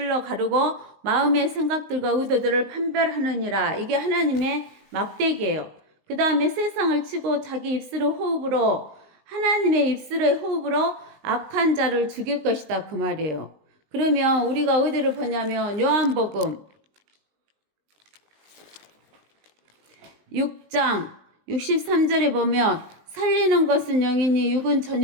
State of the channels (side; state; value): left; late; 20 ms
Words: 가르고 마음의 생각들과 의도들을 판별하느니라. 이게 하나님의 막대기예요. 그 다음에 세상을 치고 자기 입술의 호흡으로, 하나님의 입술의 호흡으로 악한 자를 죽일 것이다 그 말이에요. 그러면 우리가 어디를 보냐면 요한복음 6장 63절에 보면 살리는 것은 영이니 육은